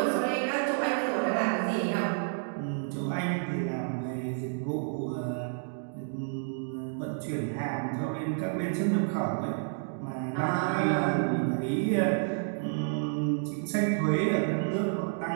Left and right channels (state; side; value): silent; left; digital silence